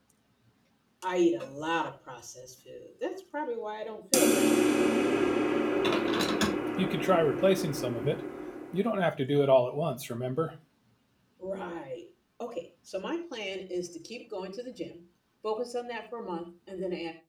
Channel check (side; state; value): both; identical; correlation 1.00